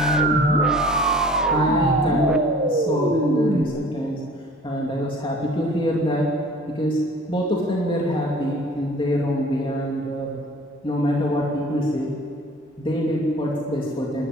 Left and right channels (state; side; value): normal; both; correlation 0.48